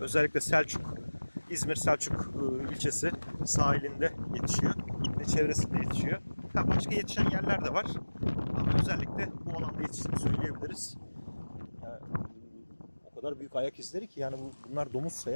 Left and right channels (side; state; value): both; inverted; correlation -1.00